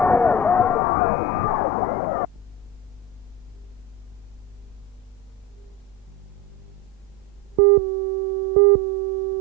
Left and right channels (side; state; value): both; normal; correlation 0.24